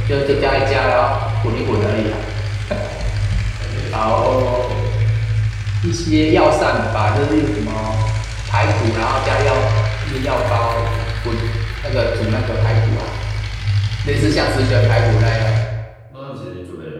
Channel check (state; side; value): identical; both; correlation 1.00